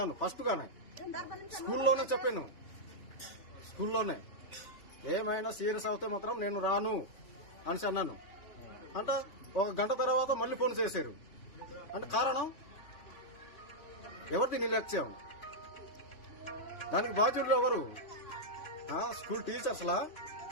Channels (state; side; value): late; right; 3.5 ms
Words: ఫస్ట్ గానే స్కూల్లోనే చెప్పాను. స్కూల్లోనే ఏమైనా సీరియస్ అవుతే మాత్రం నేను రాను అనేసి అన్నాను. అంటే 1 గంట తర్వాత మళ్ళీ ఫోన్ చేశారు. అంటే కారణం ఎవరిది నిర్లక్ష్యం? దానికి బాధ్యులు ఎవరు? స్కూల్ టీచర్స్లా